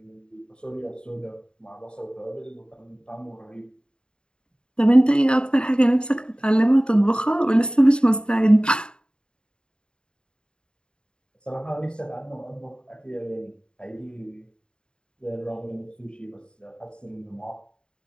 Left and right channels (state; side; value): late; right; 0.051 ms